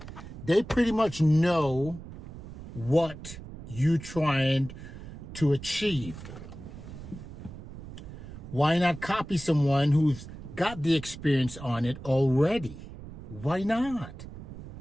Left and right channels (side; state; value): right; noise; rumble, 13 dB below the sound